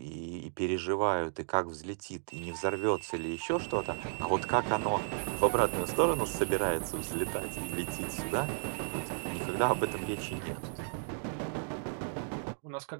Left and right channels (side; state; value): left; silent; digital silence